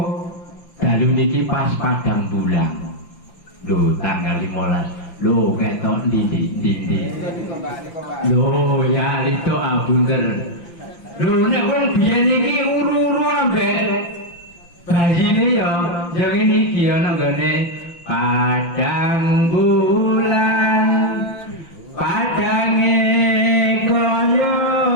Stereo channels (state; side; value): late; right; 5.9 ms